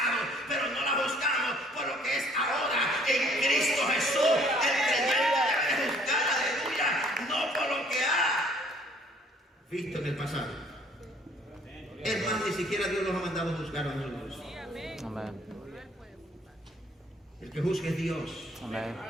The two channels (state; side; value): normal; both; correlation 0.59